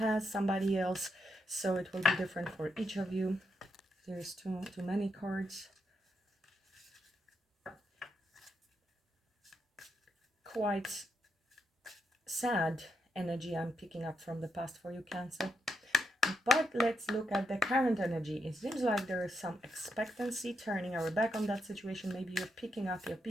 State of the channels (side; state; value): both; normal; correlation 0.80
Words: somebody else. So it will be different for each of you. There's too many cards. Quite sad energy I'm picking up from the past for you, Cancer. But let's look at the current energy. It seems like there is some expectancy, turning our back on that situation. Maybe you're picking up your